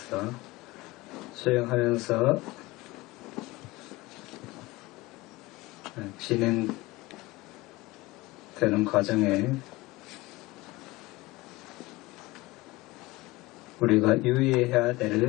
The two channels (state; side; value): quieter; right; 20.8 dB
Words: 수행하면서 진행되는 과정에 우리가 유의해야